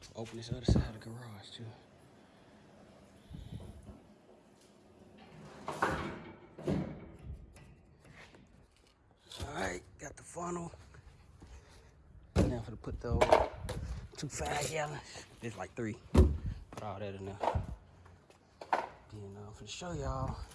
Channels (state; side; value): identical; both; correlation 1.00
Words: Open this other side of the garage too. All right, got the funnel. Now I'm gonna put those 2 5-gallons. There's like 3. Put all that in there. Then I'm gonna show y'all.